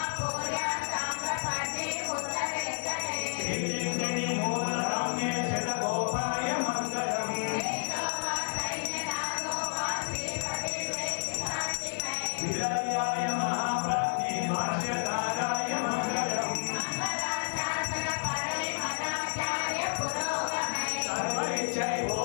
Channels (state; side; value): silent; right; digital silence